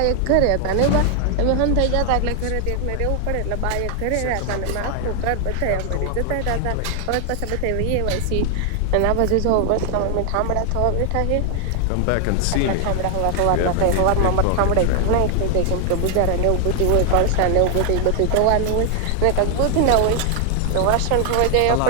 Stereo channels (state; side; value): different; both; correlation 0.00